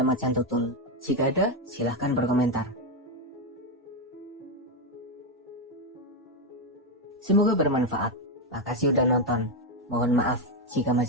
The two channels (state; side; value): normal; both; correlation 0.07